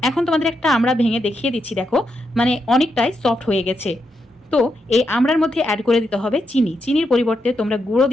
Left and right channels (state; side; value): normal; both; correlation 0.83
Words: এখন তোমাদের একটা আমড়া ভেঙে দেখিয়ে দিচ্ছি, দেখো মানে অনেকটাই সফট হয়ে গেছে। তো এই আমড়ার মধ্যে অ্যাড করে দিতে হবে চিনি। চিনির পরিবর্তে তোমরা গুঁড়ো